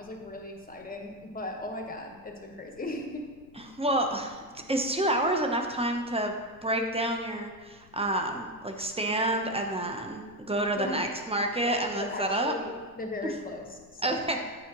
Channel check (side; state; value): left; noise; rumble, 26 dB below the sound